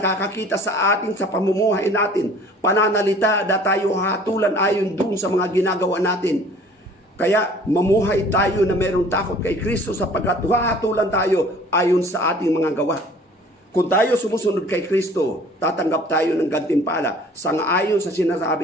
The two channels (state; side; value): normal; both; correlation 0.51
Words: sa atin sa pamumuhay natin, pananalita na tayo hatulan ayon dun sa mga ginagawa natin. Kaya mamuhay tayo na mayroong takot kay Kristo sapagkat hahatulan tayo ayon sa ating mga gawa. Kung tayo sumusunod kay Kristo, tatanggap tayo ng gantimpala sangayon sa